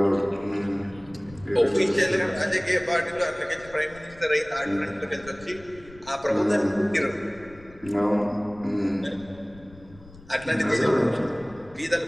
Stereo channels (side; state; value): left; noise; rumble, 22 dB below the sound